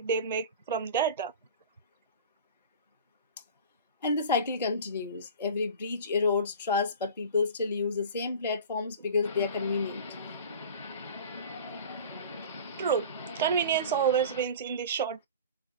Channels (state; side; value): inverted; both; correlation -0.37